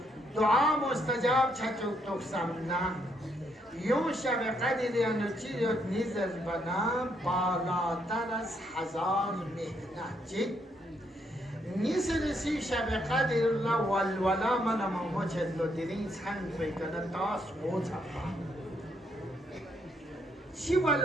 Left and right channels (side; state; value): both; normal; correlation 0.74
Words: دعا مستجاب چچوک توک سمنا یون شب قدر یا نچیریت نیزر بنا بالاتر از 1000 مهنه چی؟ نیسرسی شب قدر الله والولا من ممو چدلو دیرین سنگ بیکنه تاس موچپا چی